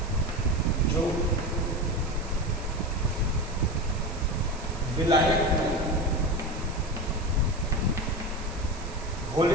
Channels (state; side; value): noise; right; hiss, 18 dB below the sound